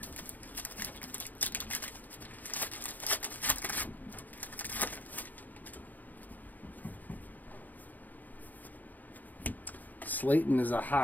Slayton is a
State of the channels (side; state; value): right; late; 0.083 ms